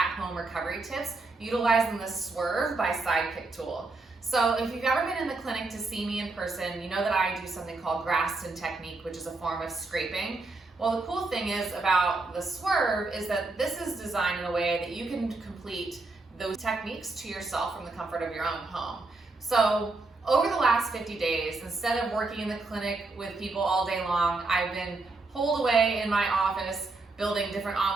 recovery tips utilizing the Swerve by Sidekick tool. So if you've ever been in the clinic to see me in person, you know that I do something called Graston technique, which is a form of scraping. Well, the cool thing is about the Swerve is that this is designed in a way that you can complete those techniques to yourself from the comfort of your own home. So over the last 50 days, instead of working in the clinic with people all day long, I've been holed away in my office building different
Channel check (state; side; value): quieter; left; 3.4 dB